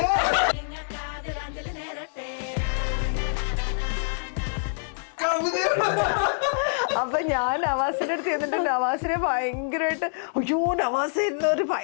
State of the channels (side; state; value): right; silent; digital silence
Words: അപ്പൊ ഞാൻ നവാസിന്റെ അടുത്ത് ചെന്നിട്ട് നവാസിനെ ഭയങ്കരമായിട്ട് അയ്യോ നവാസ് ഒരു